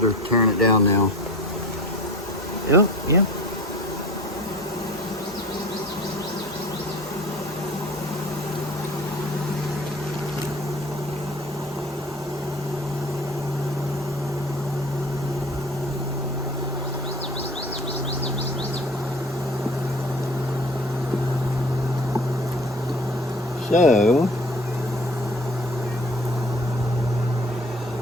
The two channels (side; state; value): both; normal; correlation 0.44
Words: tearing it down now. Yep, yep. So,